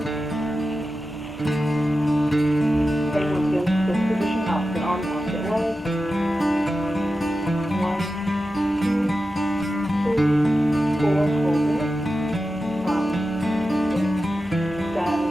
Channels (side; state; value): both; normal; correlation 0.92